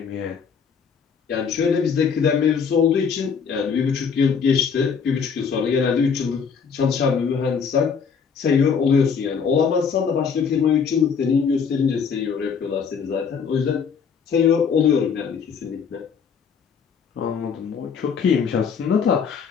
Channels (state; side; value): quieter; right; 6.4 dB